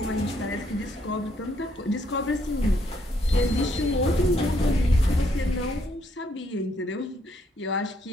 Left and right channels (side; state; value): both; normal; correlation 0.72